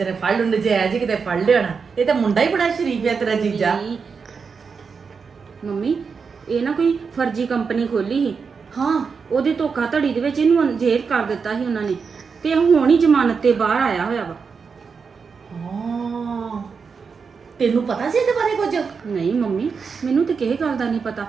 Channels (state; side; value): quieter; left; 5.5 dB